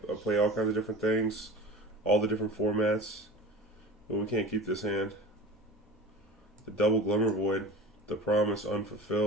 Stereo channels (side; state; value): both; normal; correlation 0.36